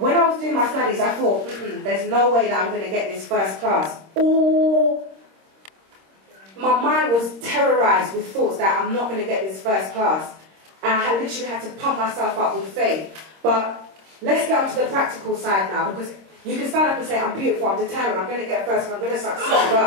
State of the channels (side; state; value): left; late; 26 ms